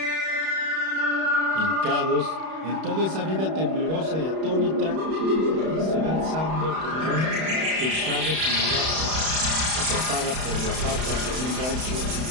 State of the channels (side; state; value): left; late; 31 ms